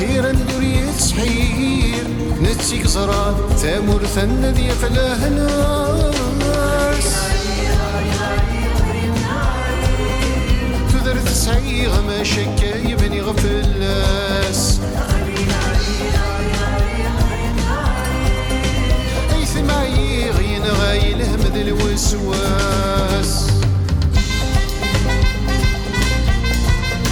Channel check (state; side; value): identical; both; correlation 1.00